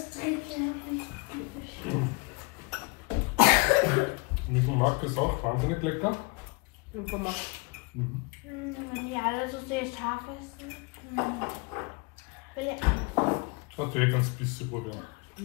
Mit dem Mark ist auch wahnsinnig lecker. Mie gomak. Wenn die alle so sehr scharf essen. Will ich Hast du eh ganz bisschen probieren.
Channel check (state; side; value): quieter; right; 29.4 dB